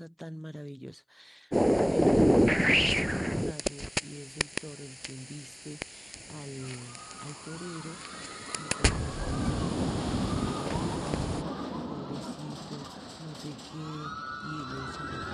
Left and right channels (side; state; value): both; identical; correlation 1.00